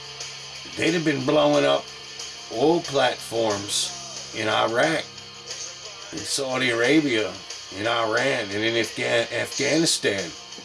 they'd have been blowing up oil platforms in Iraq, in Saudi Arabia, in Iran, and in Afghanistan.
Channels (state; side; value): identical; both; correlation 1.00